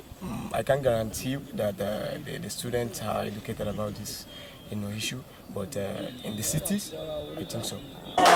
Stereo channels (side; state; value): both; identical; correlation 1.00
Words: I can't guarantee that the students are educated about this, issue. But in the cities, I think so.